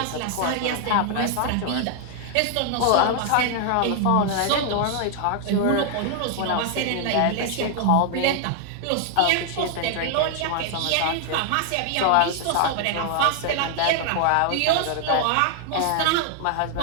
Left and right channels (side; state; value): both; different; correlation 0.00